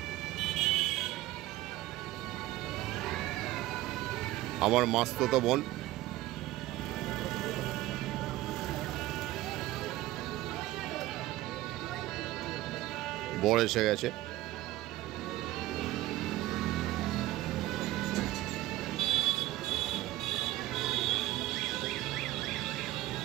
আমার মাস্তুতো বোন, বর এসে গেছে।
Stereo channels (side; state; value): left; quieter; 16.6 dB